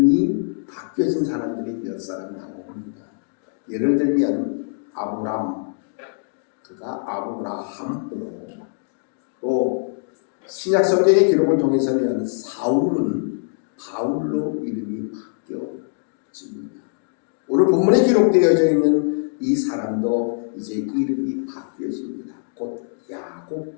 바뀌어진 사람들이 몇 사람 나옵니다. 예를 들면 아브람, 그가 아브라함으로, 또 신약 성경의 기록을 통해서는 사울은 바울로 이름이 바뀌어집니다. 오늘 본문에 기록되어져 있는 이 사람도 이제 이름이 바뀌어집니다. 곧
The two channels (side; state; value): right; silent; digital silence